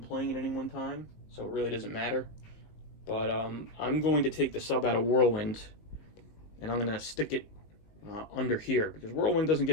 playing at any one time, so it really doesn't matter. But I'm going to take the sub out of Whirlwind, and I'm going to stick it under here, because Whirlwind doesn't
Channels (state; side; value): late; right; 19 ms